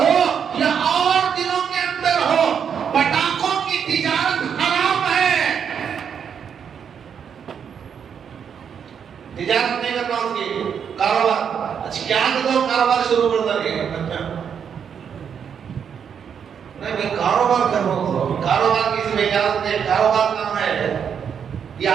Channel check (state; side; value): quieter; left; 7.5 dB